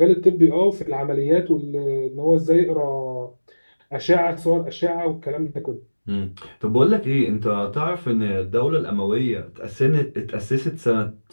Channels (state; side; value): inverted; both; correlation -1.00